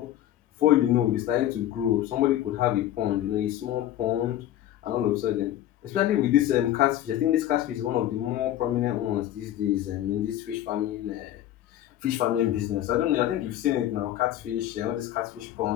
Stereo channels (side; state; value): right; quieter; 12.6 dB